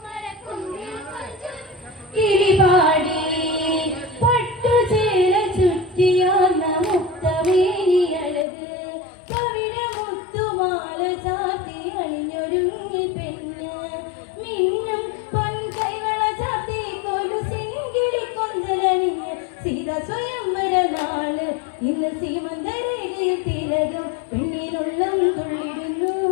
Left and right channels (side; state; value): right; drops out; at 8.5 s